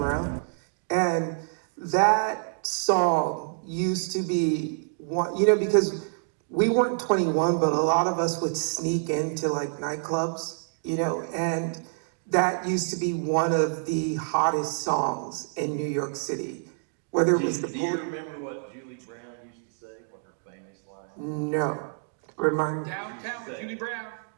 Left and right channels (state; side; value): silent; left; digital silence